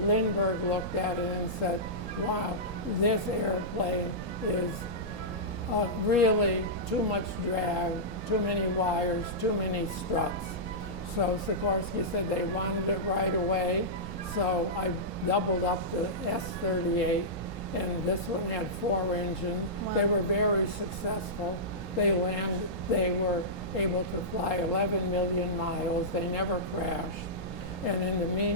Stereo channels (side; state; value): right; noise; rumble, 9 dB below the sound